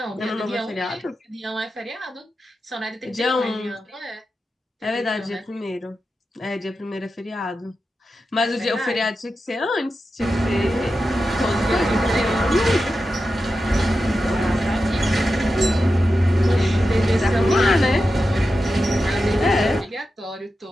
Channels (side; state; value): both; normal; correlation 0.91